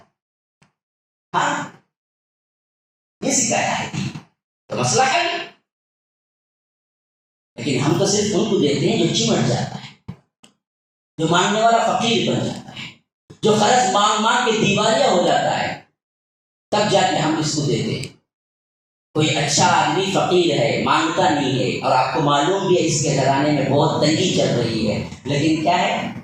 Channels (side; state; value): both; identical; correlation 1.00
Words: ہاں یہ سکھایا ہے تو مسئلہ ہے، لیکن ہم تو صرف ان کو دیتے ہیں جو چمٹ جاتا ہے، جو مانگنے والا فقیر بن جاتا ہے، جو قرض مانگ مانگ کے دیوالیہ ہو جاتا ہے، تب جا کے ہم اس کو دیتے ہیں۔ کوئی اچھا آدمی فقیر ہے، مانگتا نہیں ہے، اور آپ کو معلوم بھی ہے اس کے گھرانے میں بہت تنگی چل رہی ہے، لیکن کیا ہے